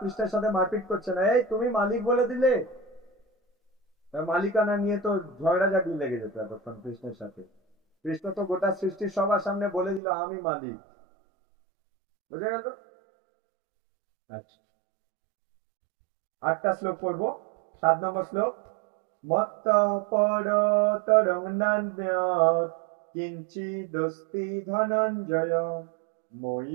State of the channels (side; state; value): left; drops out; at 10.0 s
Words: সাথে মারপিট করছে না, এই তুমি মালিক বলে দিলে। মালিকানা নিয়ে তো ঝগড়াঝাটি লেগে যেত এতক্ষণ কৃষ্ণের সাথে। কৃষ্ণ তো গোটা সৃষ্টির সবার সামনে বলে দিল আমি মালিক। বুঝা গেল? আচ্ছা, 8টা শ্লোক পড়বো। 7 নম্বর শ্লোক। মত্ত পরতরং নান্যৎ কিঞ্চিদস্তি ধনঞ্জয় মই